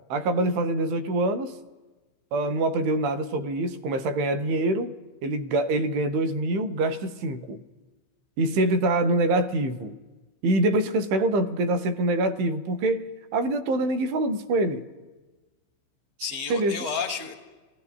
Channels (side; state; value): left; late; 15 ms